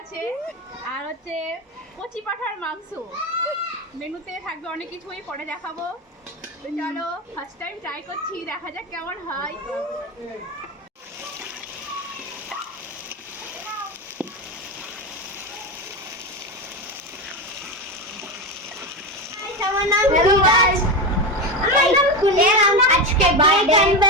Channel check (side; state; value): both; normal; correlation 0.17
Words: আছে। আর হচ্ছে কচি পাঠার মাংস মেনুতে থাকবে, অনেক কিছুই পরে দেখাবো। তো চলো ফার্স্ট টাইম ট্রাই করছি, দেখা যাক কেমন হয়। আজকে